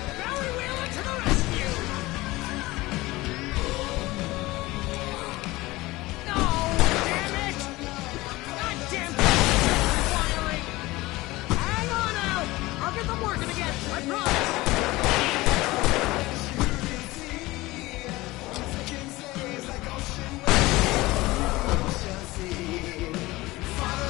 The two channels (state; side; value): quieter; right; 19.9 dB